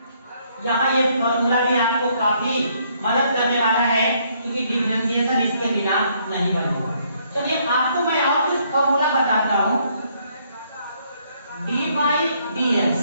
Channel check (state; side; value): inverted; both; correlation -0.68